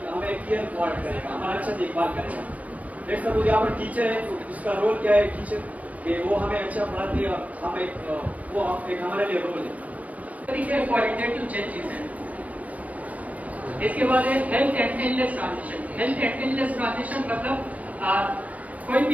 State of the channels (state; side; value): late; left; 0.071 ms